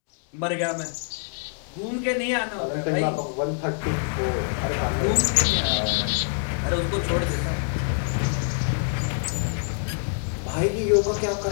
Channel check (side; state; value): right; silent; 61 dB below the other